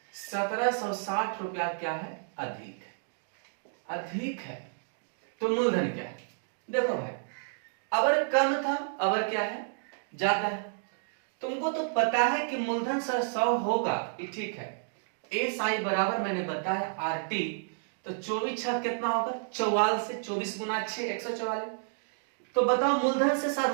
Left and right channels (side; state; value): left; silent; digital silence